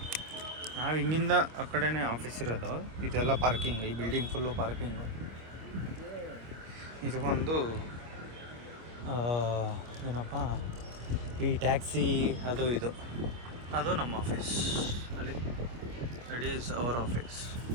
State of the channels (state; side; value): late; left; 25 ms